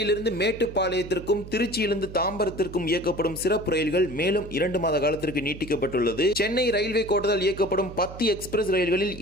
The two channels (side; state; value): right; noise; hum, 13 dB below the sound